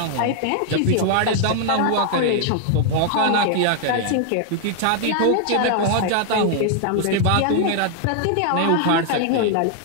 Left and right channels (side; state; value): both; different; correlation 0.00